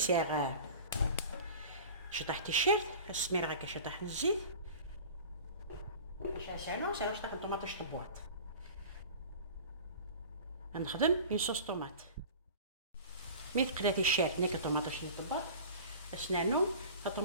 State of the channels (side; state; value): both; inverted; correlation -0.38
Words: شطح تيشيرت السمير غاكا شطح الزيت سانو شطح الطوماطوش طبواط غنخدم اون صوص طوماط مي تقلا تيشيرت نيك الطوماطوش طبواط اسنانو